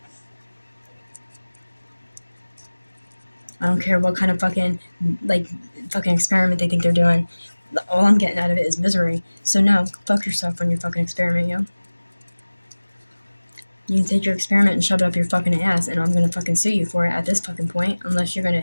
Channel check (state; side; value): inverted; both; correlation -1.00